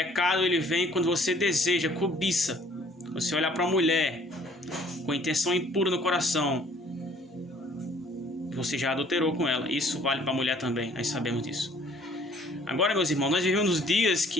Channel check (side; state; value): both; normal; correlation 0.57